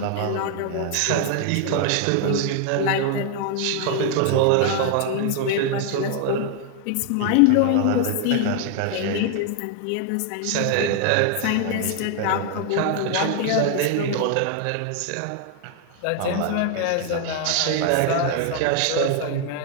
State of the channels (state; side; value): different; both; correlation 0.00